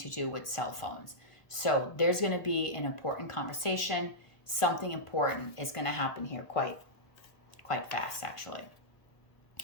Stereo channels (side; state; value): right; late; 1.4 ms